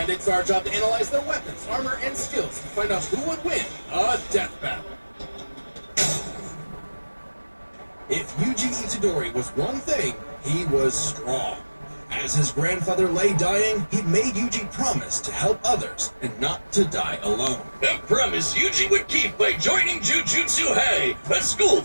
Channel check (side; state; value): both; inverted; correlation -1.00